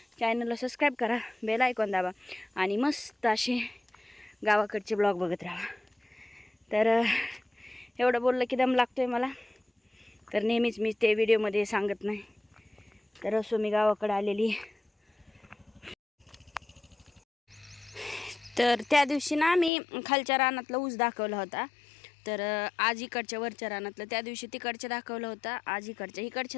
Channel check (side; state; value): right; drops out; at 19.7 s